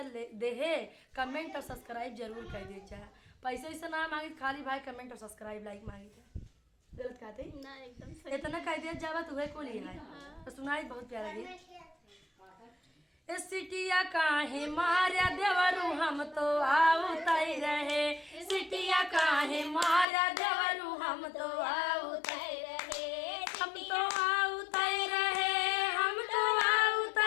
देहे कमेंट और सब्सक्राइब जरूर कर दे जाए। पैसे वैसे ना मांगी, खाली भाई कमेंट और सब्सक्राइब लाइक मांगी थे। गलत कहते ना, एकदम सही। इतना कह दिया जावा तुम्हें को लिया है। हाँ। तो सुनाई बहुत प्यारा गीत। सिटिया काहे मारा देवरू हम तो आउतई रहे। सिटिया काहे मारा देवरू हम तो आउतई रहे। हम तो आउतई रहे, हम तो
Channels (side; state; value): right; drops out; at 20.1 s